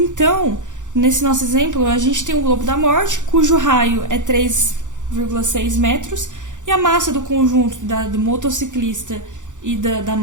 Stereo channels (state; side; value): late; left; 0.86 ms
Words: nesse nosso exemplo, a gente tem o globo da morte, cujo raio é 3,6 metros, e a massa do conjunto do motociclista e da